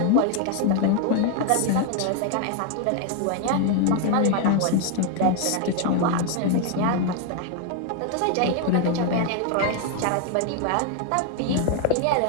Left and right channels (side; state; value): both; different; correlation 0.00